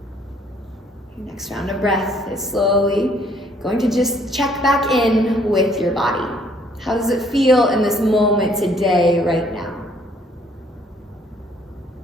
Your next round of breath is slowly going to just check back in with your body. How does it feel in this moment today, right now?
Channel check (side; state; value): both; normal; correlation 0.63